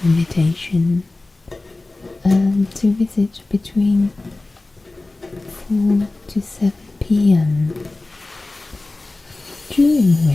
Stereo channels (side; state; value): right; quieter; 3.1 dB